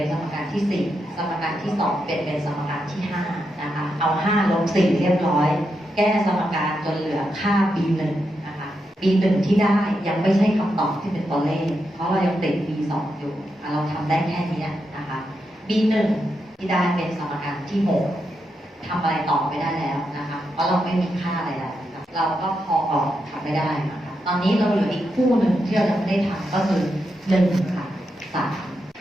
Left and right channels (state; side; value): normal; both; correlation 0.84